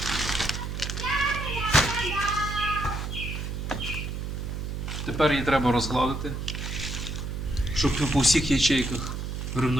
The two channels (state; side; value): noise; right; hum, 4 dB below the sound